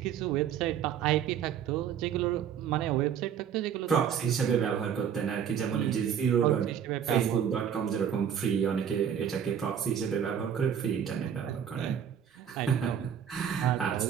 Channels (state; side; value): quieter; left; 8.5 dB